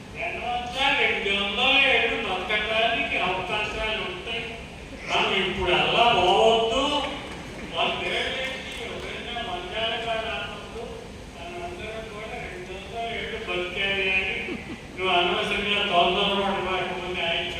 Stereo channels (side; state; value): both; identical; correlation 1.00